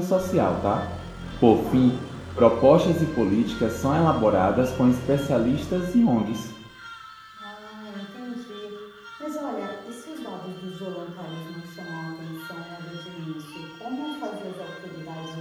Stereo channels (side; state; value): both; identical; correlation 1.00